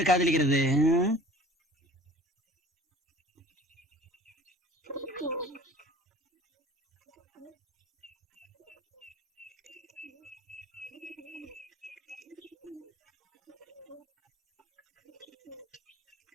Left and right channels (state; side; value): normal; both; correlation 0.46